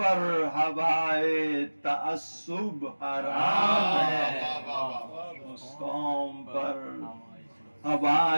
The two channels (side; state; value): both; inverted; correlation -1.00